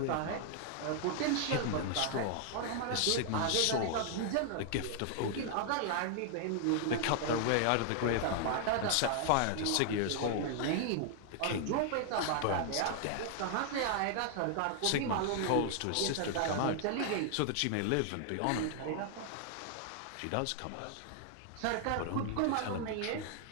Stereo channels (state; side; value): different; both; correlation 0.00